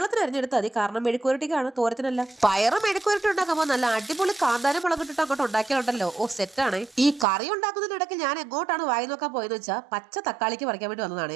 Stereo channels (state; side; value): drops out; left; at 7.2 s